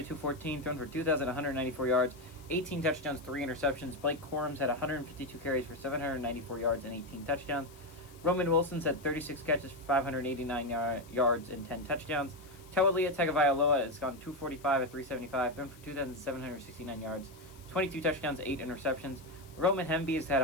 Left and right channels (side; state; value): left; noise; hiss, 24 dB below the sound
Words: thrown for 2,194 yards, 18 touchdowns, 3 interceptions. Blake Corum's had 152 carries for 794 yards and 18 touchdowns. Roman Wilson's had 36 catches for 589 yards and 10 touchdowns. Taulia Tagovailoa has gone 245 at 375, thrown for 2,769 yards, 22 touchdowns, 8 interceptions. Roman Hemby has had